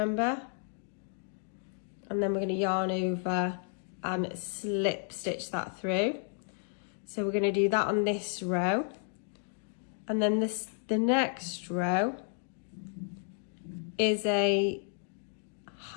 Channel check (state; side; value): silent; right; 56 dB below the other